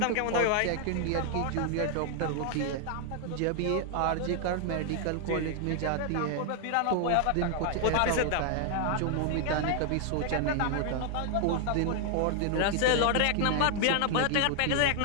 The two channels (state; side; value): different; both; correlation 0.00